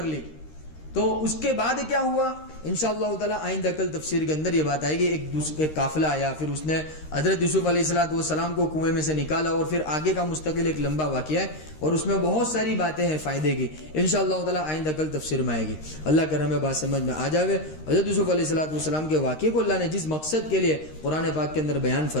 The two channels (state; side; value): late; right; 13 ms